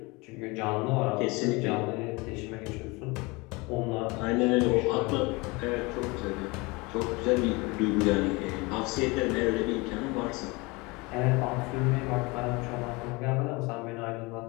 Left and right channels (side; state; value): right; quieter; 25.5 dB